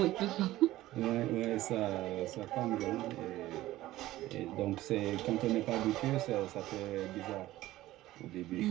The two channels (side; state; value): left; quieter; 16.0 dB